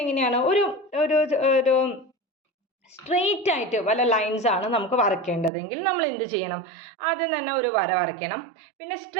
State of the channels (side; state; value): left; drops out; at 5.5 s